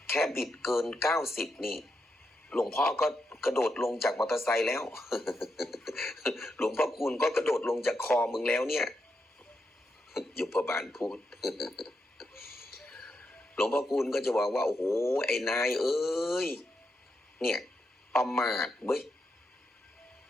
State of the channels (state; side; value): normal; both; correlation 0.84